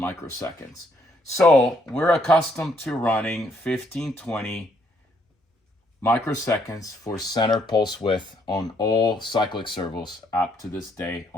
So we're accustomed to running 1520 microseconds for center pulse width on all cyclic servos up to this day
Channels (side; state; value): both; normal; correlation 0.70